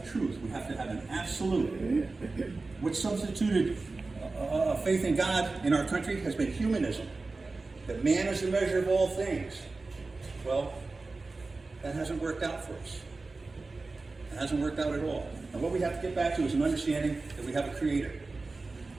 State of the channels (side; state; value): left; quieter; 3.6 dB